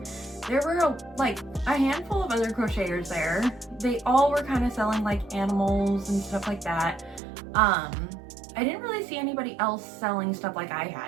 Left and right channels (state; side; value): drops out; left; at 7.2 s